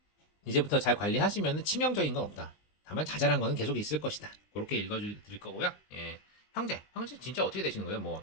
이제부터 잘 관리하시면 치명적인 건 없다. 다만 자잘한 거는 계속 있을 것이다. 그렇게 읽어드릴 거고요. 형제 진짜 어떻게 되시는 거예요? 뭐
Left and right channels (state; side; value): late; right; 19 ms